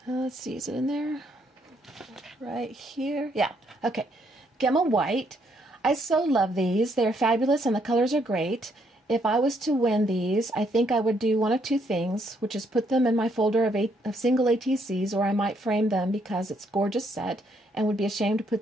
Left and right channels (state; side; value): normal; both; correlation 0.72